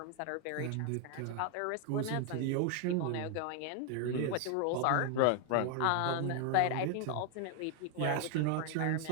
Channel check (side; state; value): both; different; correlation 0.00